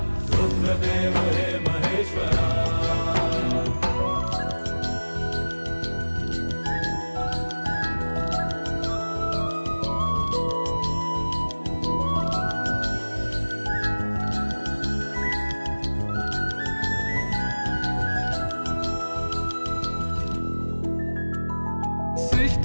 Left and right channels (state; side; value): inverted; both; correlation -1.00